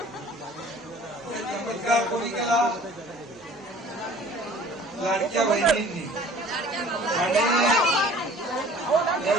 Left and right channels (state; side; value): normal; both; correlation 0.49